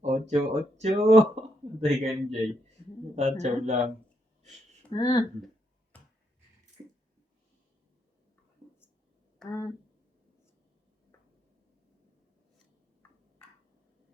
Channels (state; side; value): normal; both; correlation 0.78